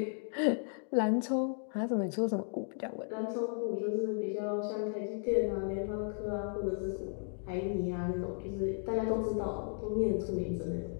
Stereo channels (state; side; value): silent; right; 55 dB below the other